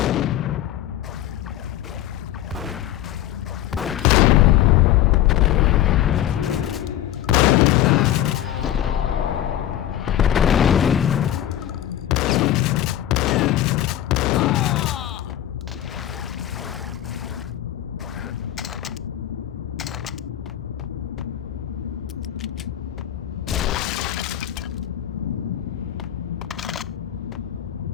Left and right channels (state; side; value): quieter; right; 12.3 dB